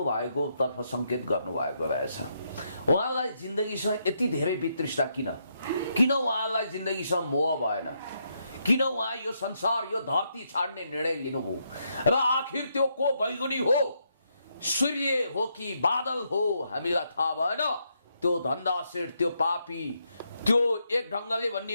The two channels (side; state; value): both; inverted; correlation -0.78